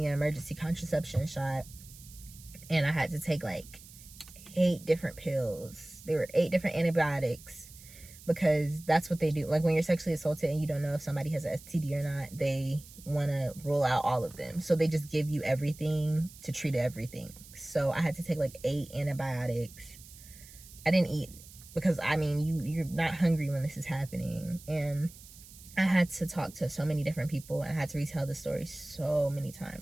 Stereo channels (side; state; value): right; noise; hiss, 19 dB below the sound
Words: an emergency contraception shot, and I had to take like 8 different pills. There were 8 different antibiotics, because that's what they do. Like, when you're sexually assaulted and you don't know if somebody has an STD or not, they want to rule out all of them, so they just give you everything to treat everything. So I had to take like 8 antibiotics. I didn't eat because, I mean, you're not hungry when this is happening, and I had to talk to so many different people. I had to retell the story so many